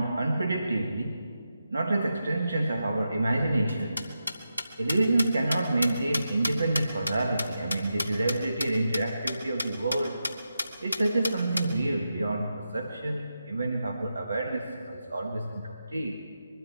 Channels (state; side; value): inverted; both; correlation -0.88